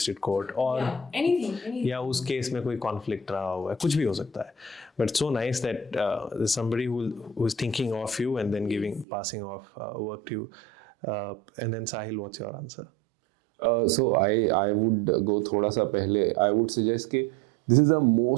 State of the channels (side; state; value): left; drops out; at 9.1 s